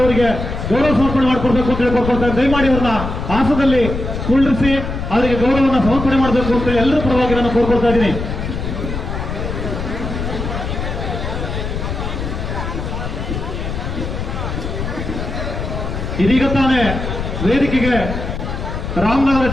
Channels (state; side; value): noise; left; rumble, 4 dB below the sound